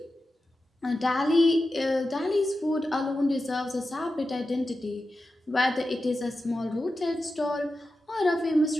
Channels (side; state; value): both; normal; correlation 0.92